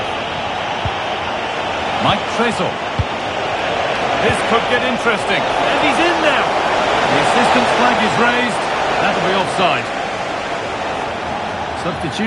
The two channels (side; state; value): both; identical; correlation 1.00